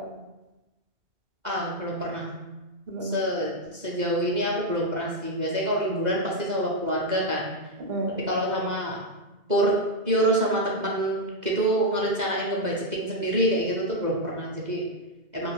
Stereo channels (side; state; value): left; late; 2.0 ms